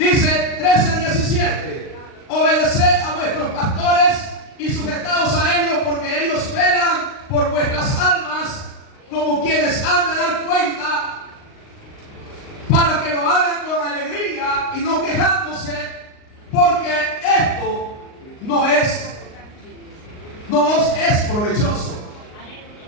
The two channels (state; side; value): late; right; 38 ms